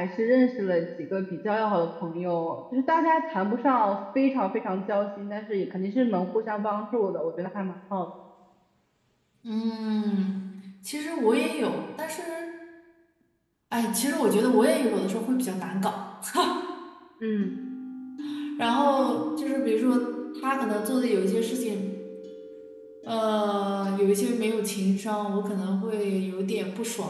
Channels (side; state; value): both; identical; correlation 1.00